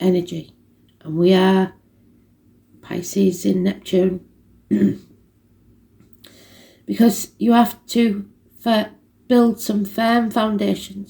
energy. And we are Pisces in Neptune. Because you have to build some firm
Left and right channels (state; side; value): identical; both; correlation 1.00